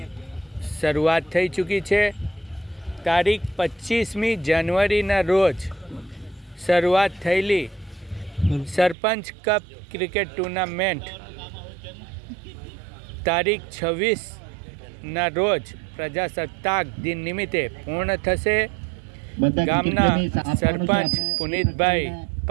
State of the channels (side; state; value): left; drops out; at 9.0 s